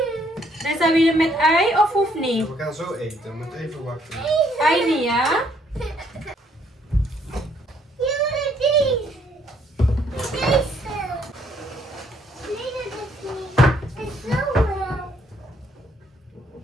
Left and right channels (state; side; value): normal; both; correlation 0.68